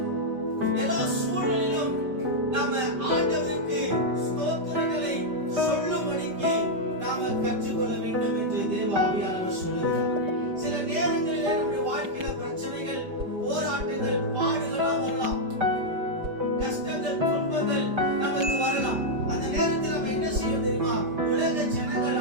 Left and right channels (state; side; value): late; left; 5.1 ms